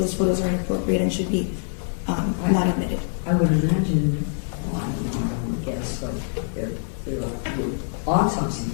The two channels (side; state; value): right; silent; 62 dB below the other